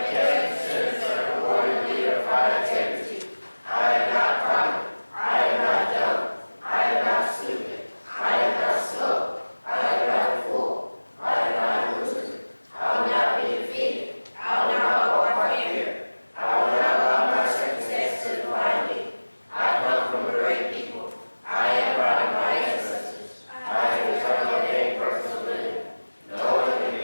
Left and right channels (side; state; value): both; inverted; correlation -1.00